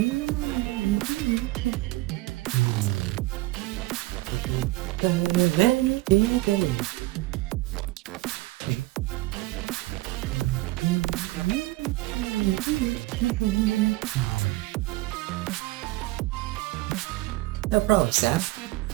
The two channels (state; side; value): quieter; left; 20.0 dB